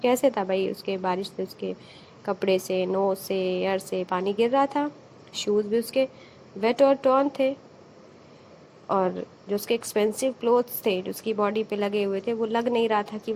कैसे था भाई, उसके बारिश से उसके कपड़े से, knows से, एयर से पानी गिर रहा था. शूज भी उसके वेट और टॉर्न थे, और जो उसके एक्सपेंसिव क्लोथ्स थे जो उसकी बॉडी पे लगे हुए थे वो लग नहीं रहा था कि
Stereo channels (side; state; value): both; identical; correlation 1.00